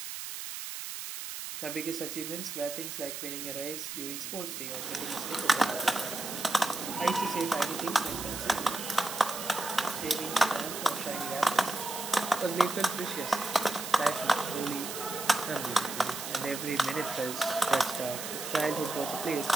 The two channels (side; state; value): right; noise; hiss, 7 dB below the sound